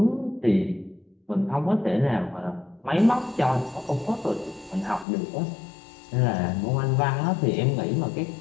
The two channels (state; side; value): drops out; right; at 5.1 s